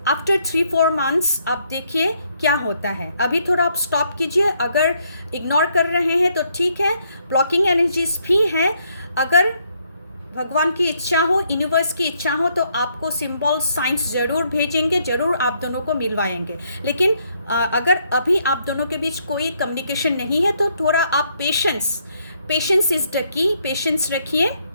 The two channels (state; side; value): inverted; both; correlation -0.72